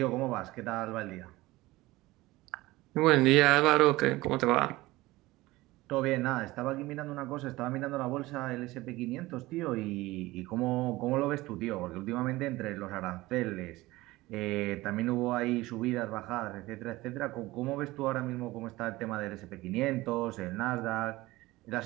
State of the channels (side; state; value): left; quieter; 19.2 dB